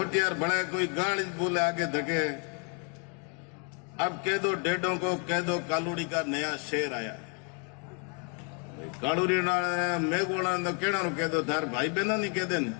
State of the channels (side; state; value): right; quieter; 36.1 dB